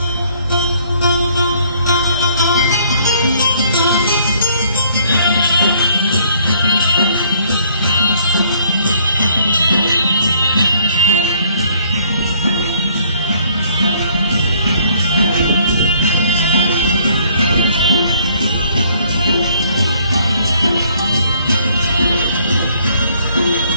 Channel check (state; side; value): inverted; both; correlation -0.63